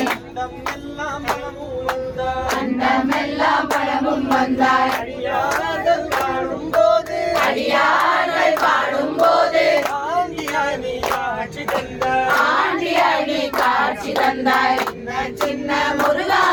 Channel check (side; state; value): both; identical; correlation 1.00